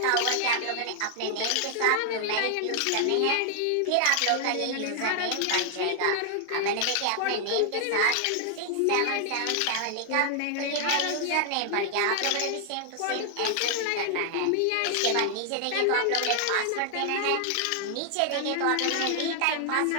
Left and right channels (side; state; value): both; different; correlation 0.00